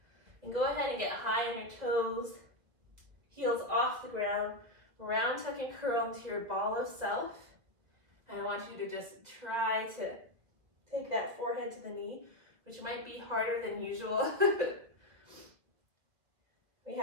And go ahead and get high on your toes, heels off the ground, round tuck and curl into your ball of self. And I want you to just try to take that forehead to the knee, which might be harder than usual. We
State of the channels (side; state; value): left; late; 1.8 ms